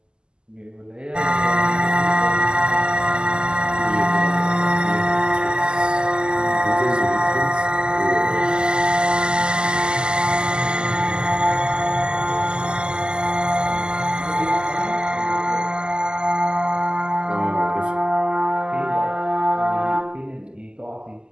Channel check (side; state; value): left; late; 0.048 ms